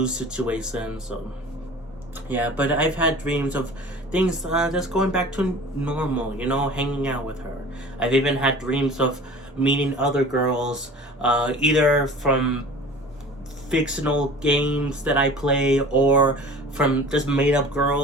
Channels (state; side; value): normal; both; correlation 0.42